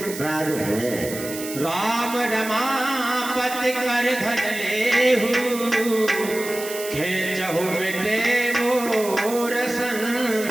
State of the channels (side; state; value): right; noise; hiss, 10 dB below the sound